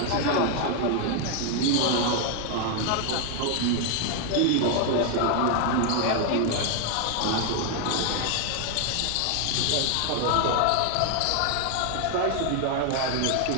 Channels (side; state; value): both; different; correlation 0.00